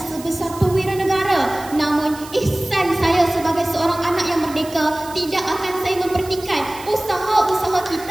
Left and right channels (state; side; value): noise; right; hiss, 17 dB below the sound